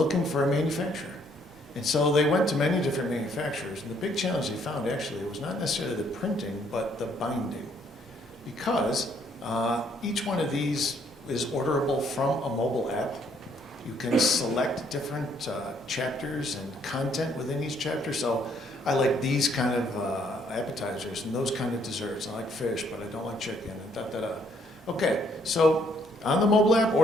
for a manufacturer. And so they went to many different manufacturers, and the big challenge they found actually was not necessarily the printing, but the binding. Because each one of these is orderable from a mobile app. You can select different chapters and content within each chapter. So I like these kind of appetizers and those kind of desserts. I like fish, but I don't like chicken, and da-da-da. Okay, so on the mobile app,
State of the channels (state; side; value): normal; both; correlation 0.67